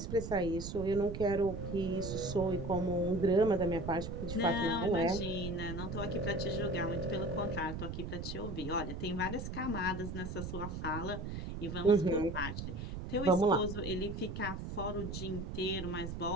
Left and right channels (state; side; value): noise; right; rumble, 6 dB below the sound